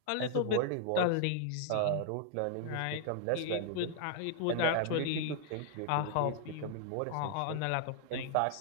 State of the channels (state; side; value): different; both; correlation 0.00